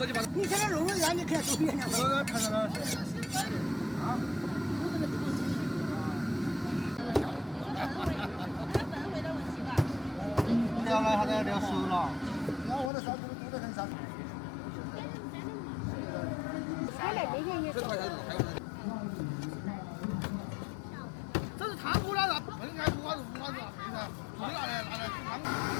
斤8。你现在肉圆你看都别了。我看到了。啊。聊了，他在聊熟了。那我的烧猪多得很噻。他来这些也。这是汤锅了，不应该不管是不管是啥子，自己拿来煮汤。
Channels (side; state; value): right; drops out; at 12.9 s